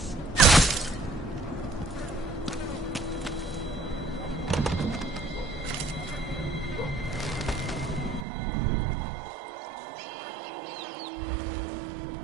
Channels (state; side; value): drops out; left; at 8.2 s